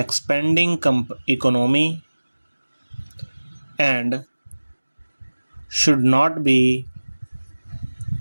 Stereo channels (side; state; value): both; inverted; correlation -1.00